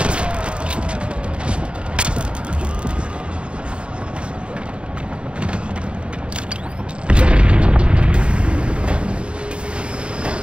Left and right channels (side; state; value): left; late; 0.056 ms